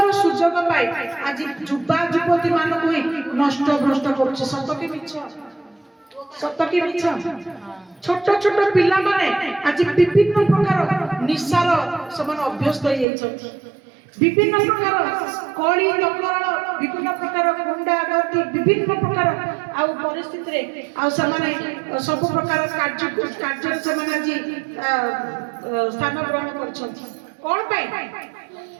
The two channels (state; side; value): drops out; left; at 13.1 s